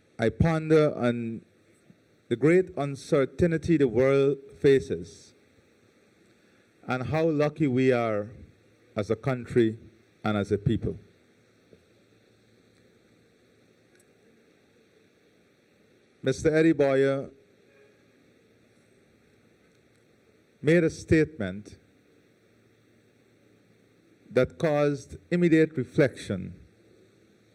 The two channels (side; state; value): both; identical; correlation 1.00